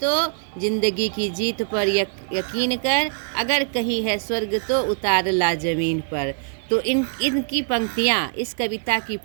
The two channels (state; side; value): silent; left; digital silence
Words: जिंदगी की जीत पर यकीन कर, अगर कहीं है स्वर्ग तो उतार ला जमीन पर। तो इनकी पंक्तियाँ, इस कविता की